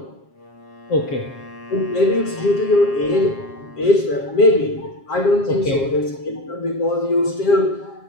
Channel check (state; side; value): late; right; 7.5 ms